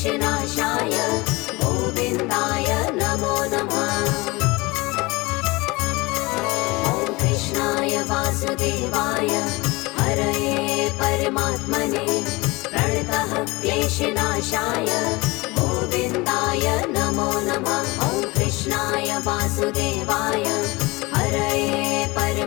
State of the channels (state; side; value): quieter; right; 23.4 dB